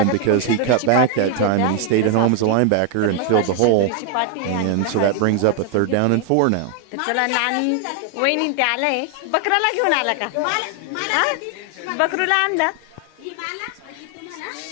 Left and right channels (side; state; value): both; different; correlation 0.00